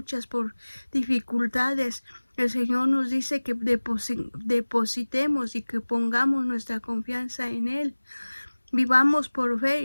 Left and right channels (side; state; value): both; inverted; correlation -1.00